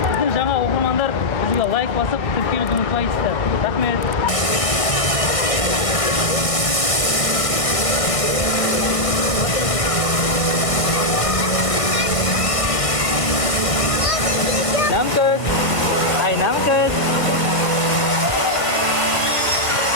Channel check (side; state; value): right; late; 1.4 ms